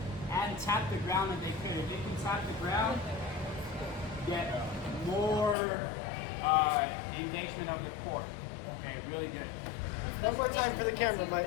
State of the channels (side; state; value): right; drops out; at 5.6 s